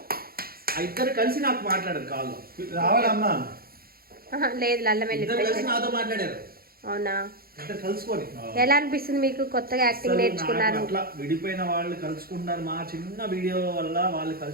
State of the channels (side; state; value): left; late; 0.44 ms